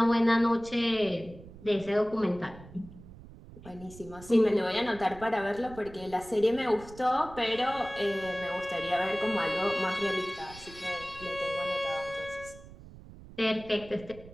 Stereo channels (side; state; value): right; noise; rumble, 18 dB below the sound